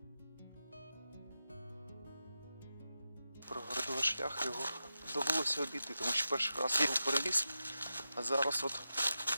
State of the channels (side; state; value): both; inverted; correlation -0.90